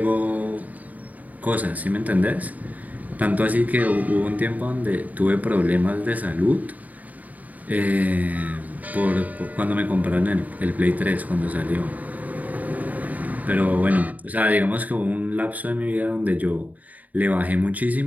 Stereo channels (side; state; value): left; late; 0.075 ms